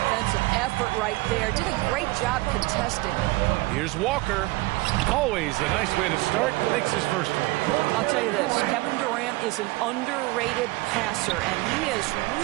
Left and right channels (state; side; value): quieter; left; 21.2 dB